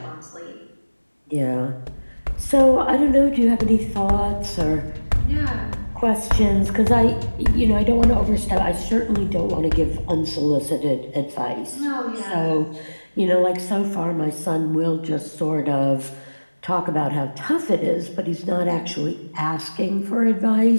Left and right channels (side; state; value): both; inverted; correlation -1.00